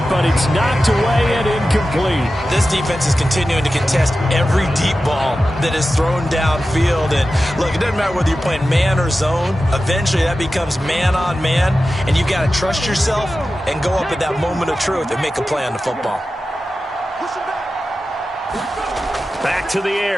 but it's knocked away and incomplete. This defense is continuing to contest every deep ball that is thrown downfield. And look, it doesn't matter whether you're playing man or zone. Eventually that becomes man on man, and you've got to trust yourself and go up at that moment of truth and make a play on the football. Back to the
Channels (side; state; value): both; normal; correlation 0.93